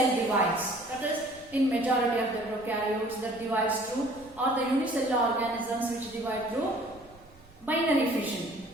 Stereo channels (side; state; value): right; noise; rumble, 27 dB below the sound